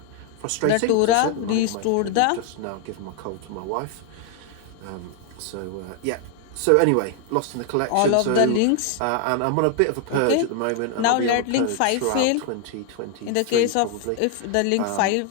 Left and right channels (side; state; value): both; different; correlation 0.00